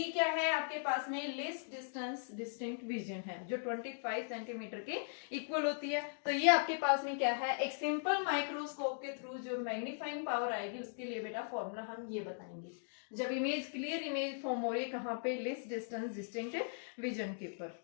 क्या है आपके पास में, लेस डिस्टेंस डिस्टिंक्ट विजन है, जो 25 सेंटीमीटर के इक्वल होती है। तो ये आपके पास में क्या है, एक सिंपल माइक्रोस्कोप के थ्रू जो मैग्नीफाइंग पावर आएगी उसके लिए बेटा फॉर्मूला हम ये बताएंगे, जब इमेज क्लियर इमेज फॉर्म हो रही है कहाँ पे, लेस डिस्टेंस डिस्टिंक्ट विजन के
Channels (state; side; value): silent; right; digital silence